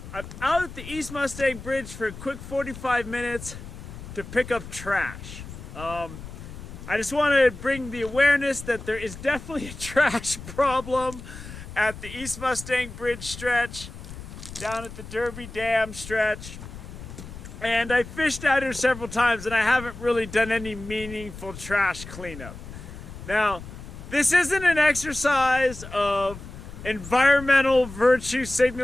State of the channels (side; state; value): left; noise; rumble, 13 dB below the sound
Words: I'm out at the East Mustang Bridge for a quick 45 minutes to pick up trash. I just want to bring the awareness that there is definitely a trash problem at the East Mustang Bridge stretch, down at the Derby Dam stretch. And I fished out here several times and I haven't really done any meaningful trash cleanup. Now, this isn't an exercise of environmental virtue